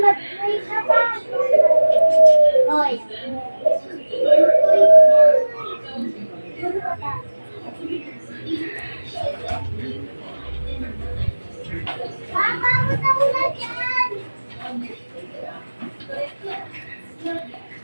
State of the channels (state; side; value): inverted; both; correlation -1.00